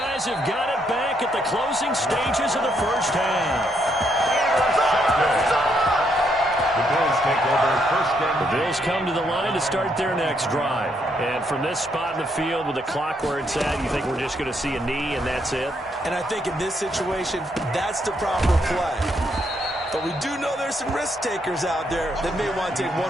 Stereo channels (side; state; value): both; normal; correlation 0.75